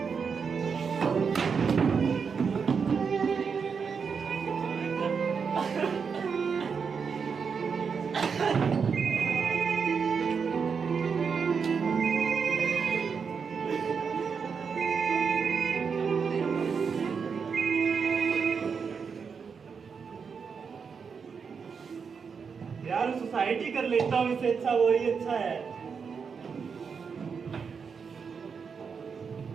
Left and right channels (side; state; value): left; quieter; 5.9 dB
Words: यार सोसाइटी कर लेता हूँ, इससे अच्छा वही अच्छा है।